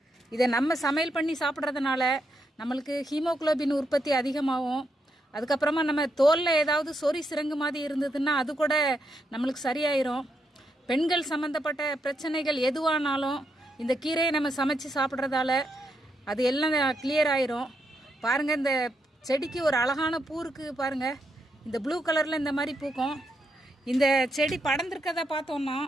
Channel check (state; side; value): normal; both; correlation 0.80